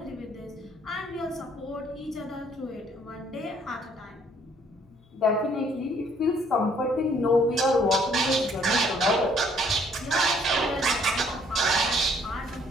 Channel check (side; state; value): both; normal; correlation 0.63